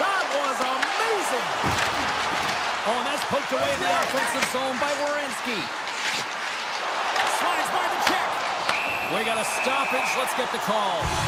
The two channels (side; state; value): both; identical; correlation 1.00